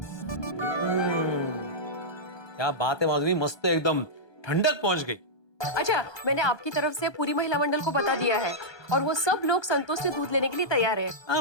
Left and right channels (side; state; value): right; late; 1.2 ms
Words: क्या बात है माधवी, मस्त एकदम ठंडक पहुंच गई। अच्छा, मैंने आपकी तरफ से पूरी महिला मंडल को बता दिया है और वो सब लोग संतोष से दूध लेने के लिए तैयार है।